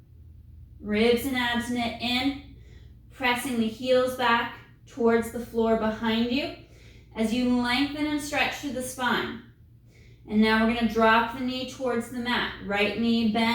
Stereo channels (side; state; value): both; identical; correlation 1.00